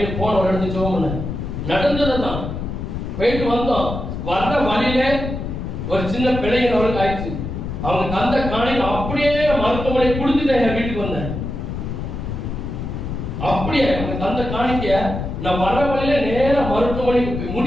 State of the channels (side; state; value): left; noise; rumble, 5 dB below the sound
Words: போன ஒரு இடத்துக்கு ஜெபம் நடந்ததுதான். போயிட்டு வந்தோம், வர்ற வழியில ஒரு சின்ன பிள்ளைங்க அவளுக்கு ஆயிடுச்சு. அவங்க தந்த காணியில் அப்படியே மருத்துவமனை கொடுத்துட்டு என் வீட்டுக்கு வந்தேன். அப்படியே அவங்க தந்த காணிக்க நான் வர்ற வழியில நேர மருத்துவமனைக்கு